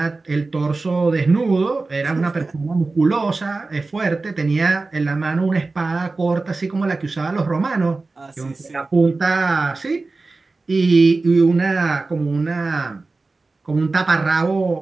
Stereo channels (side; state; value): left; quieter; 3.6 dB